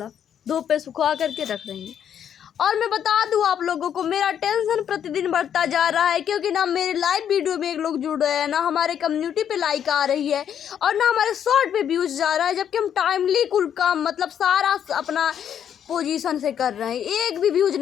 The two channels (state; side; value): quieter; right; 9.1 dB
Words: धूप पे सुखा करके रख रही हैं। और मैं बता दूं आप लोगों को, मेरा टेंशन प्रतिदिन बढ़ता जा रहा है क्योंकि ना मेरे लाइव वीडियो में एक लोग जुड़ रहे हैं, ना हमारे कम्युनिटी पे लाइक आ रही है और ना हमारे शॉर्ट पे व्यूज जा रहा है, जबकि हम टाइमली कुल काम मतलब सारा अपना पोजीशन से कर रहे हैं, एक भी व्यूज